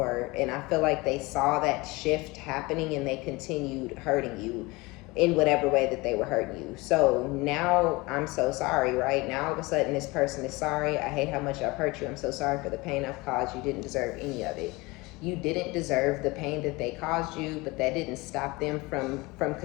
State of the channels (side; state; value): right; quieter; 23.4 dB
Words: And I feel like they saw that shift happening and they continued hurting you in whatever way that they were hurting you. So now I'm so sorry, right? Now all of a sudden this person is sorry. I hate how much I've hurt you. I'm so sorry for the pain I've caused. You didn't deserve any of it. You didn't deserve the pain that they caused you, but that didn't stop them from